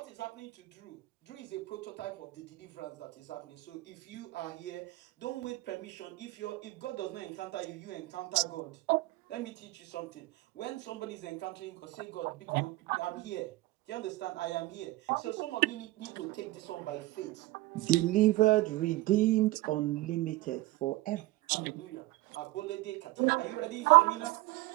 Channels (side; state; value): left; quieter; 18.9 dB